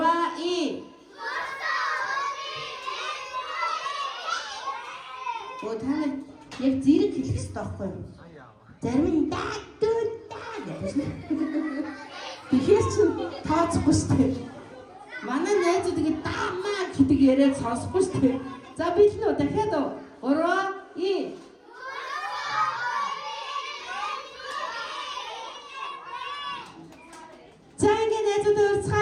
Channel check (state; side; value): identical; both; correlation 1.00